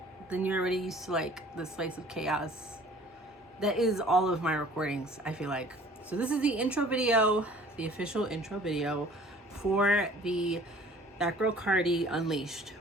then you're already used to like the slice of chaos that is all of my recordings, I feel like. So this is the intro video, the official intro video for the That Girl Cardi Unleashed,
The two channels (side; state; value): both; normal; correlation 0.51